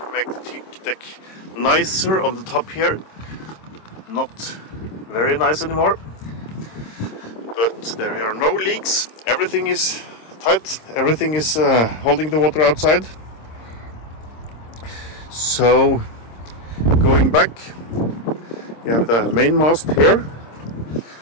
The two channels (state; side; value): late; right; 26 ms